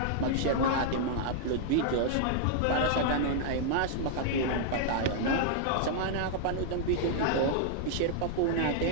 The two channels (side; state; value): both; different; correlation -0.01